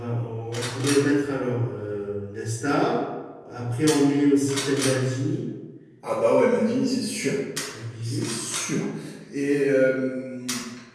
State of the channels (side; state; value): both; identical; correlation 1.00